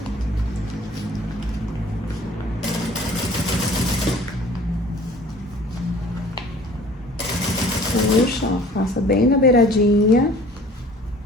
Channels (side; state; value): both; normal; correlation 0.50